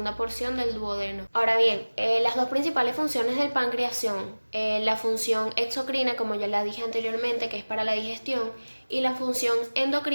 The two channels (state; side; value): inverted; both; correlation -1.00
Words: porción del duodeno. Ahora bien, las dos principales funciones del páncreas son la función exocrina, como ya la dije anteriormente, que es para la digestión, y la función